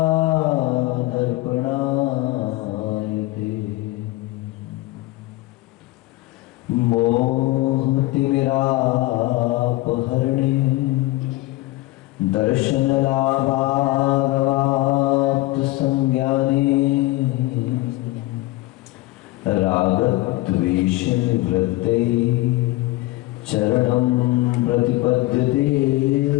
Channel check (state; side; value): quieter; right; 19.3 dB